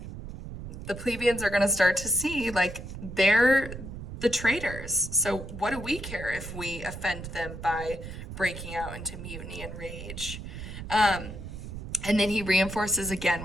the plebeians are going to start to see like they're the traitors. So what do we care if we offend them by breaking out into mutiny and rage? And then he reinforces again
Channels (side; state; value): right; noise; rumble, 10 dB below the sound